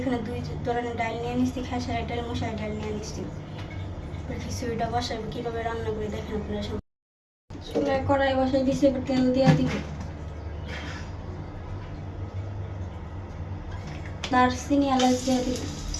এখানে 2 ধরনের ডাল নিয়ে নিচ্ছি, খেসারি ডাল, মশারি ডাল নিয়ে নিচ্ছি। খিচুড়িটা বসাবো কীভাবে রান্না করে দেখেন আপনারা সব। চুলায় কড়াই বসাই দিচ্ছি, এবার তেল দিয়ে দিব। দারচিনি এলাচ দিয়ে দিব,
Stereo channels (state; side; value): identical; both; correlation 1.00